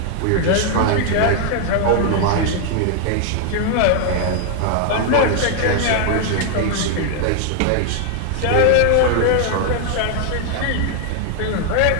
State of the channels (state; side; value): different; both; correlation 0.00